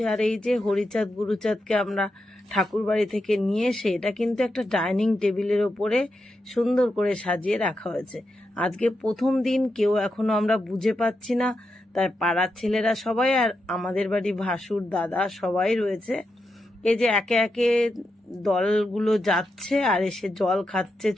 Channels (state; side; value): normal; both; correlation 0.86